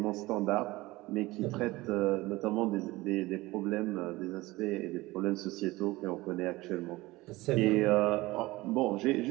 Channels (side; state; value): left; quieter; 20.0 dB